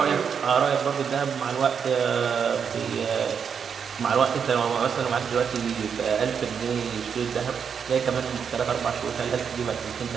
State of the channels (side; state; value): left; quieter; 6.9 dB